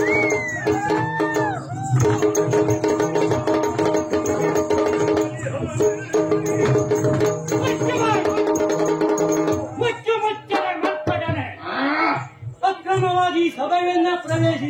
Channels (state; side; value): identical; both; correlation 1.00